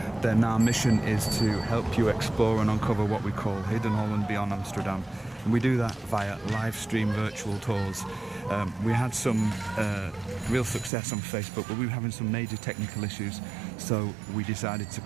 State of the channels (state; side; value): drops out; left; at 10.9 s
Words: then our mission is to help you explore and uncover what we call hidden Holland beyond Amsterdam, and we do that via live stream virtual tours. We had some real success on Facebook, but we were having some major technical issues, so we decided to